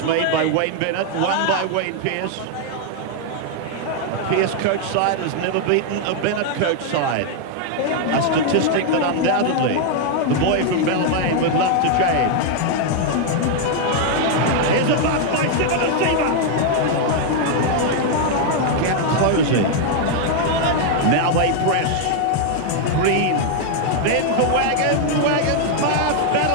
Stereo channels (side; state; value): both; different; correlation 0.00